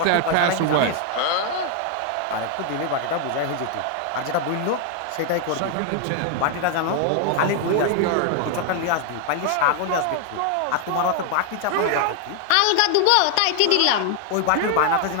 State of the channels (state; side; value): different; both; correlation 0.00